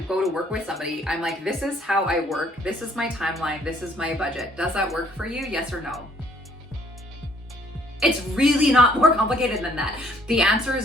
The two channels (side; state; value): both; normal; correlation 0.62